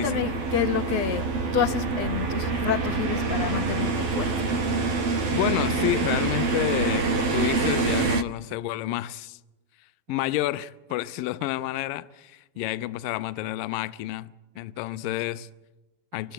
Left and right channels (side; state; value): left; late; 12 ms